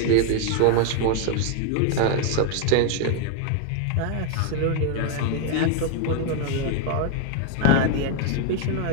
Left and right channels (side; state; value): both; different; correlation 0.01